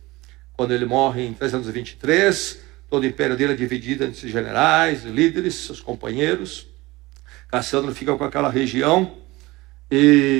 Quando ele morre em 323, todo o império dele é dividido entre generais, líderes, seus companheiros. Cassandro fica com aquela região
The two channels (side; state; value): left; quieter; 20.7 dB